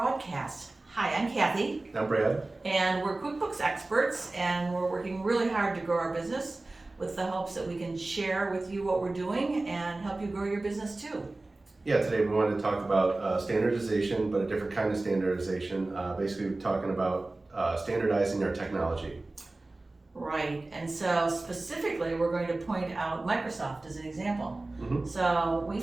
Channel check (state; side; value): quieter; left; 3.0 dB